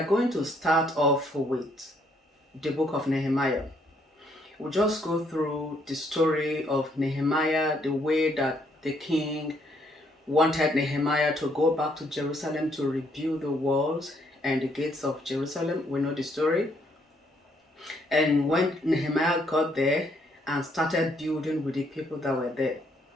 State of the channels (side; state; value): both; normal; correlation 0.70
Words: going to start off with the book of Nehemiah. We'll just go through the story of Nehemiah, the way that the king wanted Nehemiah to go back to Jerusalem to rebuild the walls and the gates of Jerusalem. We know the story. And when Nehemiah got there and started building with the people that were there,